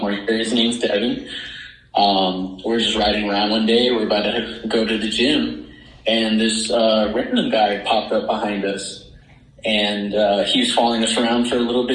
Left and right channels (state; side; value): identical; both; correlation 1.00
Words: year, his name's Devin. We're just riding around one day. We're about to go to the gym, and this random guy popped up behind us, and he was following us around for a little